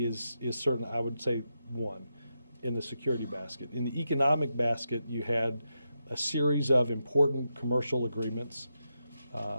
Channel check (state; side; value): inverted; both; correlation -0.86